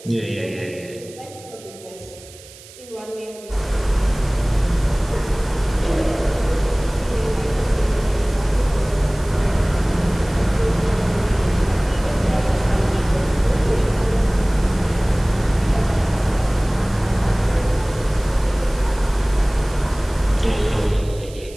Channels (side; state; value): right; noise; hiss, 20 dB below the sound